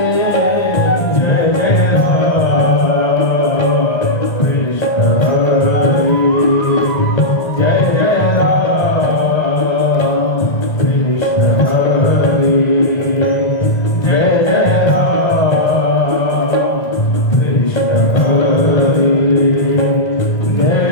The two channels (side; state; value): right; late; 1.6 ms